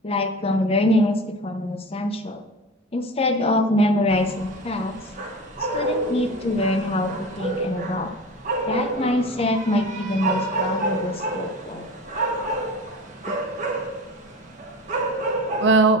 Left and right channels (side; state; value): both; normal; correlation 0.32